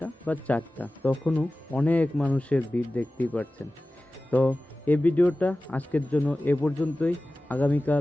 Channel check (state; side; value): normal; both; correlation 0.96